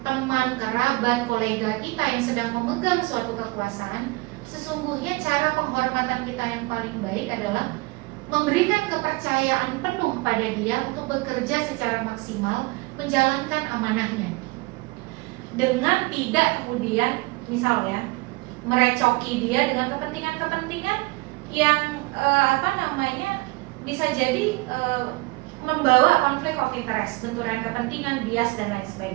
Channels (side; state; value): left; quieter; 24.0 dB